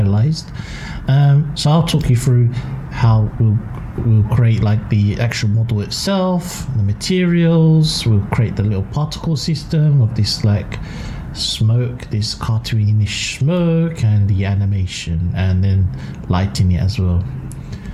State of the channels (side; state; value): both; identical; correlation 1.00